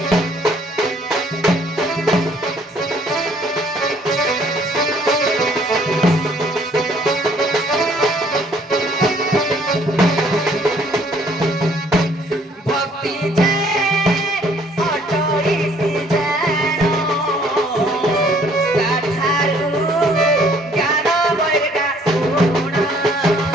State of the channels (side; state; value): both; normal; correlation 0.61